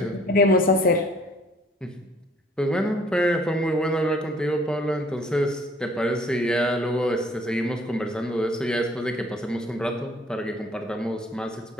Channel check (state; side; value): normal; both; correlation 0.56